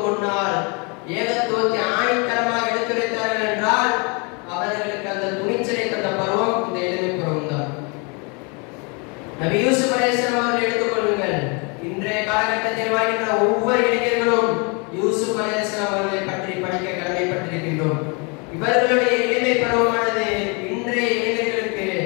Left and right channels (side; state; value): right; quieter; 32.3 dB